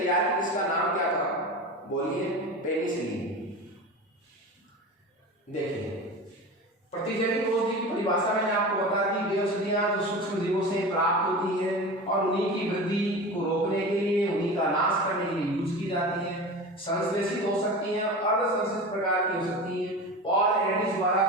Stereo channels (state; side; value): normal; both; correlation 0.30